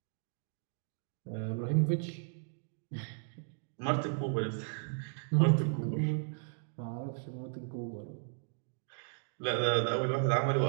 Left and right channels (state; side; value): silent; left; digital silence